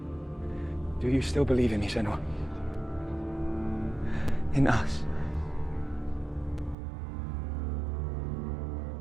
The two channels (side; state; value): left; drops out; at 6.8 s